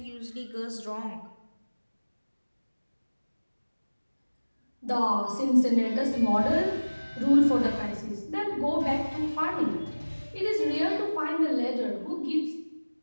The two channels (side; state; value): both; inverted; correlation -1.00